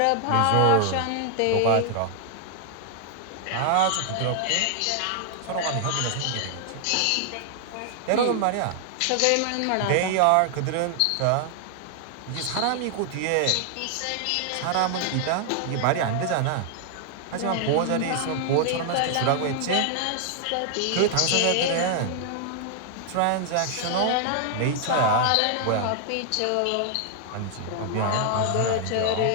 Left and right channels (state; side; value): different; both; correlation 0.00